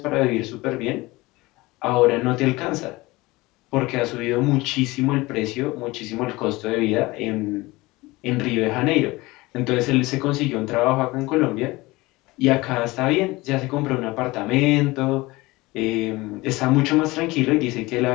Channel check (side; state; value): right; quieter; 21.3 dB